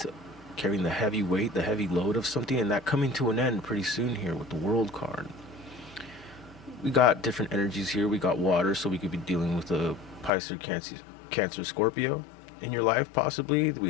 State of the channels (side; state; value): right; drops out; at 10.3 s